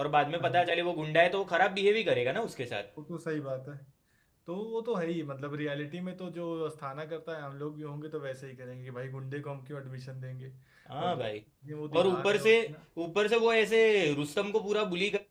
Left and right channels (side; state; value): both; identical; correlation 1.00